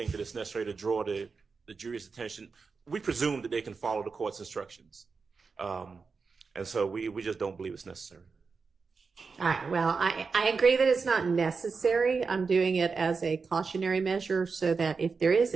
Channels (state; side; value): quieter; left; 4.9 dB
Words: that it's necessary to draw the jury's attention. We presume that they can follow the court's instructions. And so we just don't believe it's necessary. All right, well, I agree that it's not necessary. I'm doing it as a cautionary measure so that if there is